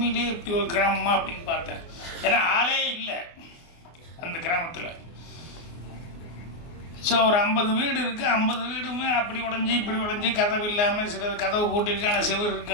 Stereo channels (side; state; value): right; late; 24 ms